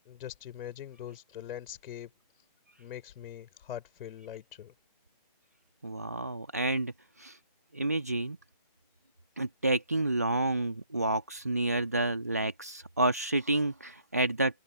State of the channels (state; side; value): inverted; both; correlation -0.65